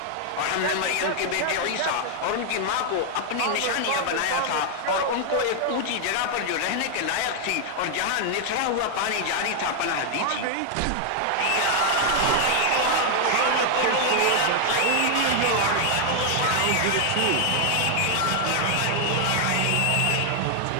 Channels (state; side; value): different; both; correlation 0.00